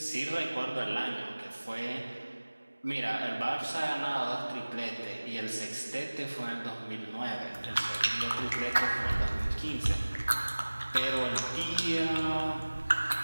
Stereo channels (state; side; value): inverted; both; correlation -1.00